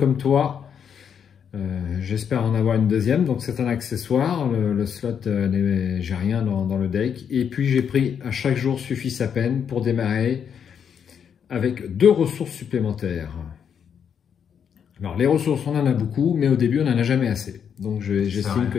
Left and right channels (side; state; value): right; quieter; 7.7 dB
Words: toi. J'espère en avoir une deuxième, donc c'est un accessoire. Le slot, j'ai rien dans le deck. Et puis j'ai pris à chaque jour suffit sa peine pour démarrer avec 2 ressources supplémentaires. Alors les ressources, on en a beaucoup, mais au début on n'en a jamais assez. Donc j'estime que